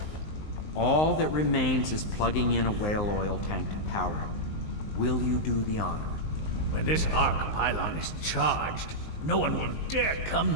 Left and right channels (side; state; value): right; late; 19 ms